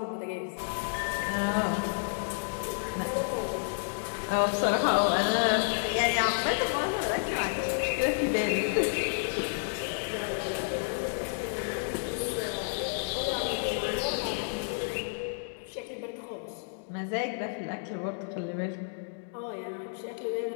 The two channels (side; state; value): right; silent; digital silence